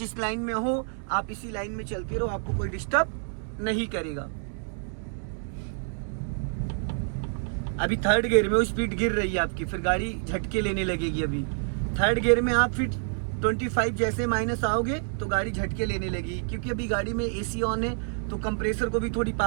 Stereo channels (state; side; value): silent; left; 60 dB below the other